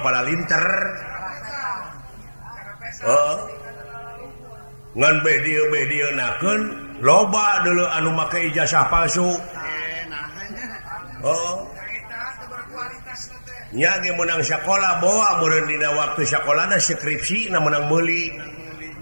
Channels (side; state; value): both; inverted; correlation -1.00